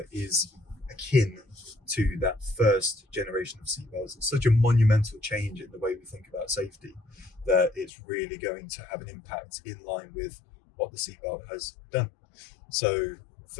is akin to that first generation of seatbelts. It's such a monumental change in the way we think about safety that it's really going to have an impact in line with what the seatbelt has done. So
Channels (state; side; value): drops out; right; at 7.9 s